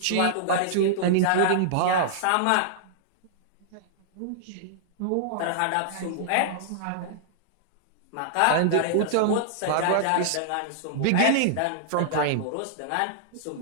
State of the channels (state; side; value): different; both; correlation -0.02